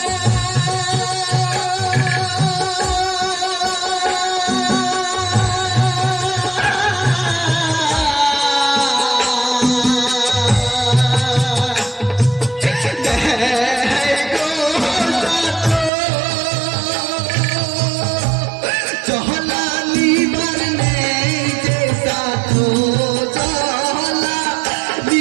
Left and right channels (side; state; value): left; drops out; at 15.9 s